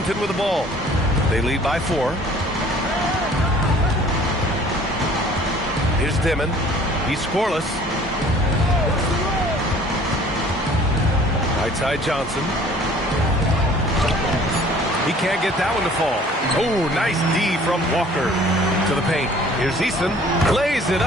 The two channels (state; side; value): normal; both; correlation 0.52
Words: with the ball. They lead by 4. Here's Dimon. He's scoreless. Right side Johnson. He can't get that one to fall. Oh, nice D from Walker to the paint. Here's Eason. Lays it